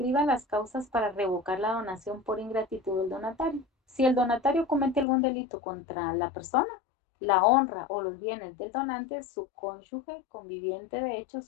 las causas para revocar la donación por ingratitud del donatario. Si el donatario comete algún delito contra la persona, la honra o los bienes del donante, su cónyuge, conviviente de hecho,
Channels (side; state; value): right; drops out; at 5.1 s